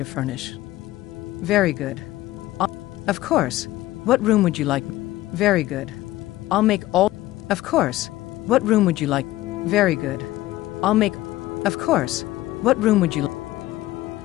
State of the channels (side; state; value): right; quieter; 16.4 dB